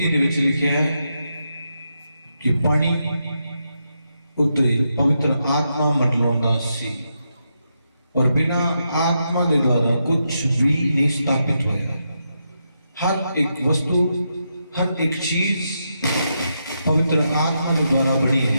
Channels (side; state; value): both; inverted; correlation -0.83